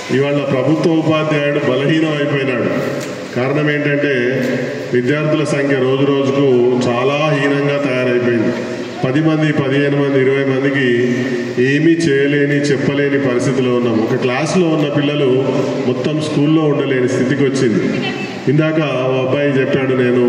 ఇవాళ ప్రభుత్వ ఉపాధ్యాయుడు బలహీనం అయిపోయినాడు. కారణం ఏంటంటే విద్యార్థుల సంఖ్య రోజు రోజుకు చాలా హీనంగా తయారైపోయింది. 10 మంది, 15 మంది, 20 మందికి ఏమీ చేయలేని, చెప్పలేని పరిస్థితిలో ఉన్నాం. ఒక క్లాస్లో ఉన్న పిల్లలు మొత్తం స్కూల్లో ఉండలేని స్థితికి వచ్చింది. ఇందాక ఓ అబ్బాయి చెప్పాడు, నేను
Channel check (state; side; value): identical; both; correlation 1.00